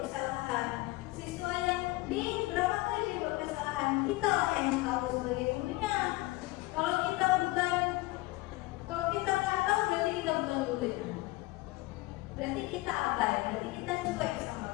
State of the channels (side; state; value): right; quieter; 20.6 dB